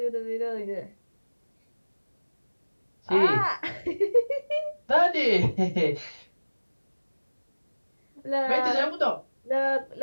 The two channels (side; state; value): both; inverted; correlation -1.00